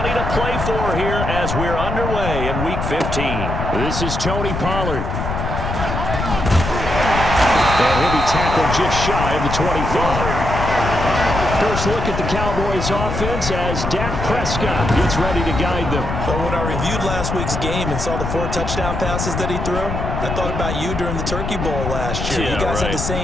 to play for here as we're underway in Week 15. This is Tony Pollard. And he'll be tackled just shy of the 25. First look at the Cowboys offense as Dak Prescott gets ready to guide them. But when I reviewed last week's game and saw the 4 touchdown passes that he threw, I thought about you during the Turkey Bowl last year. You guys had the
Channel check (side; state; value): left; noise; rumble, 4 dB below the sound